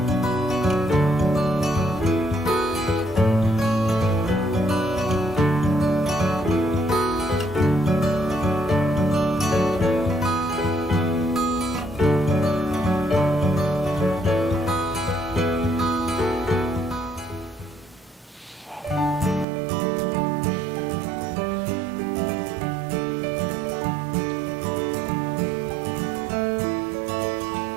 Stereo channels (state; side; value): drops out; left; at 19.5 s